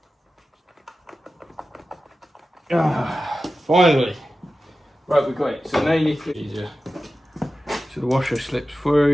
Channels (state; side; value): normal; both; correlation 0.94